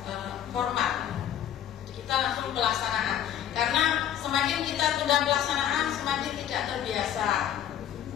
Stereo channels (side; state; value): right; quieter; 10.4 dB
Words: format. Kita langsung pelaksanaan. Karena semakin kita tunda pelaksanaan, semakin tidak terbiasa.